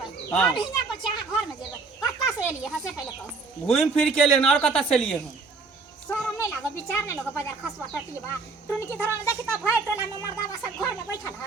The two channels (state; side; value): quieter; left; 4.2 dB